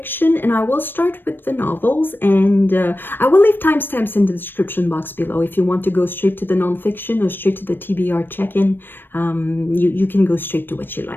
and I will start with the novels, and I will leave timestamps in the description box below. If you want to go straight to the nonfiction or straight to the TBR check-in, you can go straight to what you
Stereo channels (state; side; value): late; right; 0.096 ms